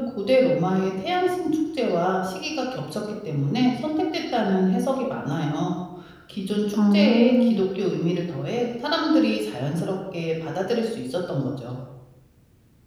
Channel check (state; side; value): identical; both; correlation 1.00